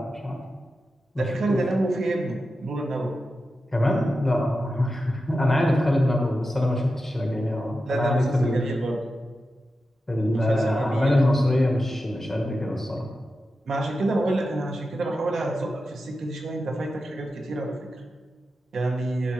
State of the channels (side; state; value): both; normal; correlation 0.91